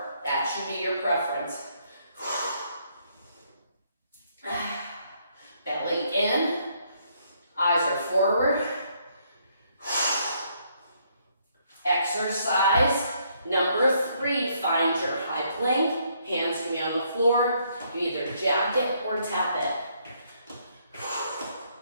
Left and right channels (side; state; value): both; inverted; correlation -0.71